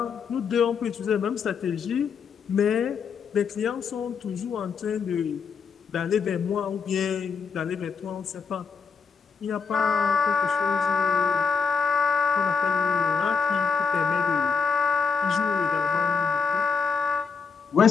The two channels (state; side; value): quieter; right; 5.6 dB